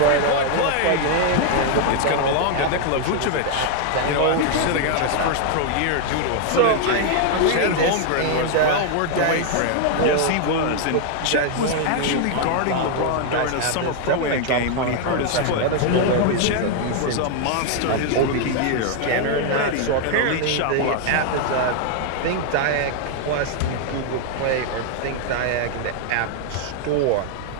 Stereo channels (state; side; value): different; both; correlation 0.00